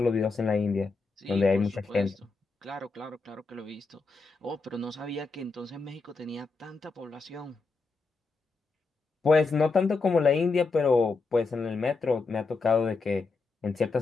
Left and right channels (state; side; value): quieter; right; 4.0 dB